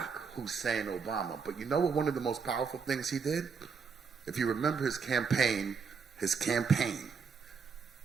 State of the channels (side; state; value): left; quieter; 5.7 dB